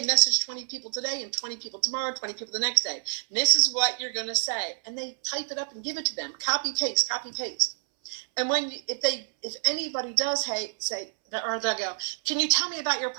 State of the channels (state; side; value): silent; left; 60 dB below the other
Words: message 20 people today and 20 people tomorrow, 20 people the next day. And this is what you're going to say. And they type it up and give it to them. Copy, paste, copy, paste. And if anybody does say, or they'll go, can you tell me about your